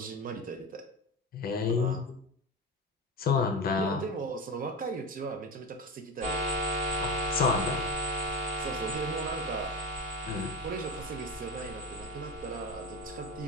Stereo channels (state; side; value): normal; both; correlation 0.23